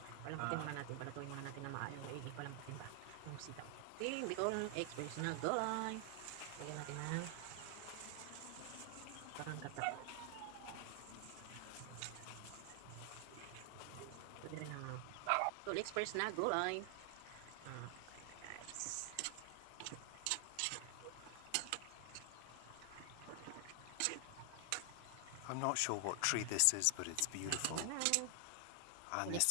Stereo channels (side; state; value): both; different; correlation 0.00